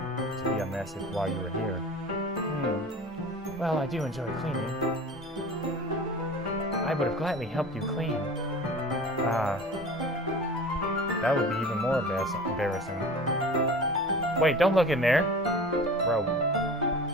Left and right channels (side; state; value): both; normal; correlation 0.38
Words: to be a mess while you were here. Well, I do enjoy cleaning. I would have gladly helped you clean. Ah. That would be even more embarrassing. Wait, don't look in there. Bro.